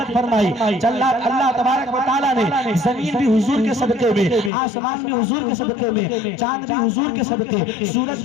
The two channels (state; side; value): drops out; right; at 4.5 s